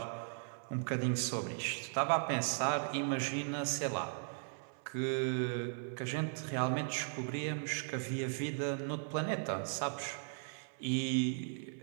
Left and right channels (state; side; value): silent; left; 53 dB below the other